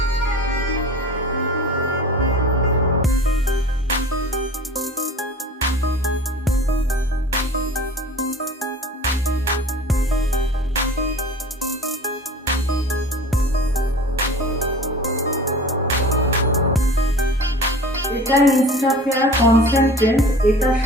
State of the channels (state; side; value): normal; both; correlation 0.40